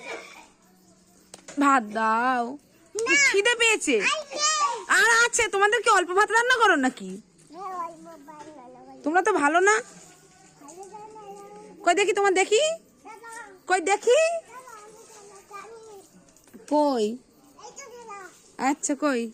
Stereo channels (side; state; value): both; identical; correlation 1.00